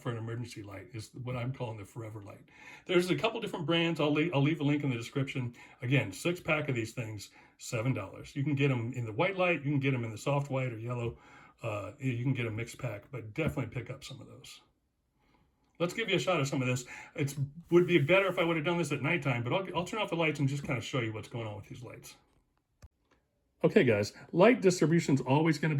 for an emergency light, is what I'm calling the forever light. There's a couple different brands. I'll leave a link in the description. Again, 6-pack of these things, $7. You can get them in the white light. You can get them in the soft white or yellow. You can get a mixed pack, but definitely pick up some of those. Let's give you a shot of some of this. It would be better if I would have done this at nighttime, but I'll turn off the lights and just kind of show you what's going on with these lights. Okay, guys, light distribution is always going to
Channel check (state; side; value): identical; both; correlation 1.00